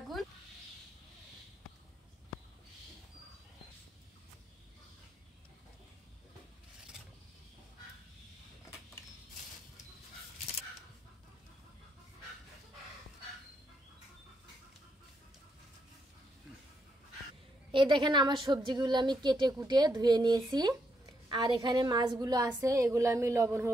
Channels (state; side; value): normal; both; correlation 0.78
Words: এই দেখেন, আমার সবজিগুলো আমি কেটে কুটে ধুয়ে নিয়েছি। আর এখানে মাছগুলো আছে, এগুলো আমি লবণ